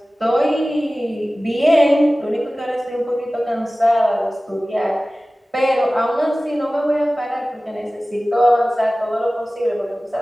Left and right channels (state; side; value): normal; both; correlation 0.97